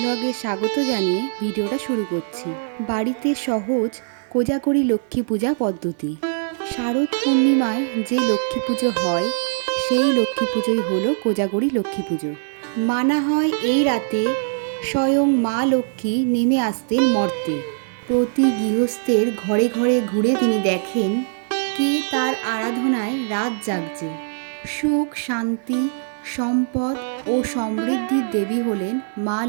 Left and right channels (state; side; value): silent; left; digital silence